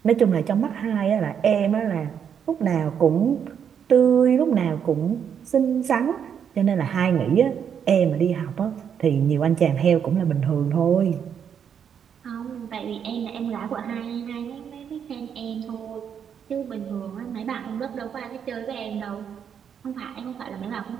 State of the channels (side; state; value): left; quieter; 7.9 dB